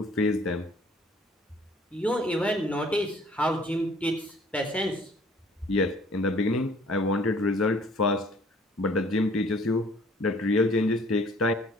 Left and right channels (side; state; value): both; normal; correlation 0.56